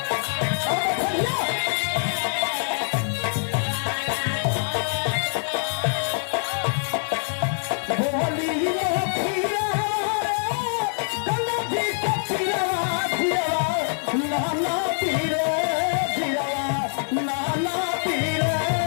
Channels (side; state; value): right; silent; 60 dB below the other